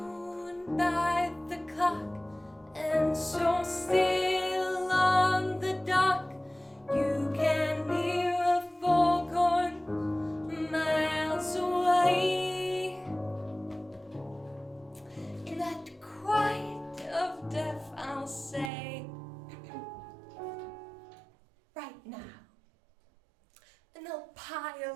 by the clock, and so still on the dock, you can hear a foghorn miles away. In that quiet of death, I'll say, right now. And they'll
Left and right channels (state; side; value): drops out; left; at 18.7 s